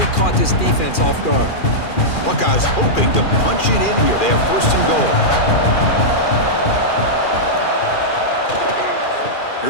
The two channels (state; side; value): late; right; 2.4 ms